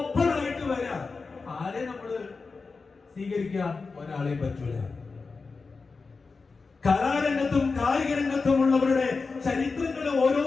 ആയിട്ട് വരാം. ആരെ നമ്മള് സ്വീകരിക്കുക? ഒരാളെയും പറ്റൂല. കലാരംഗത്തും കായിക രംഗത്തും ഉള്ളവരുടെ ചരിത്രങ്ങൾ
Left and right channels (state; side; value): quieter; right; 4.4 dB